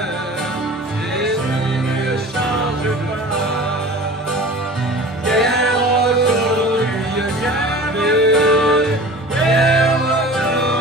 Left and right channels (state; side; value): normal; both; correlation 0.40